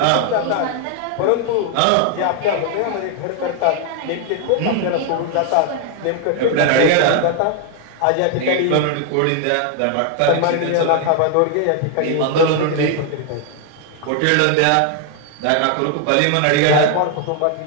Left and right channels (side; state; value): both; different; correlation 0.00